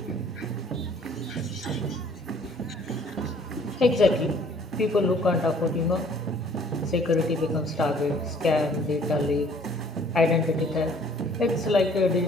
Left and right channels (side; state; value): both; normal; correlation 0.57